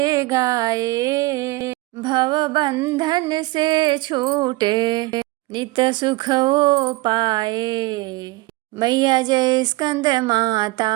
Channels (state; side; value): quieter; left; 21.3 dB